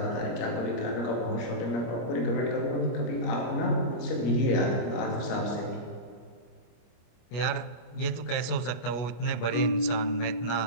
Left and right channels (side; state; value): right; late; 25 ms